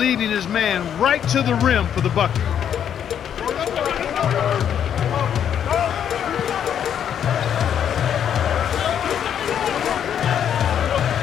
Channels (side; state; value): right; quieter; 9.0 dB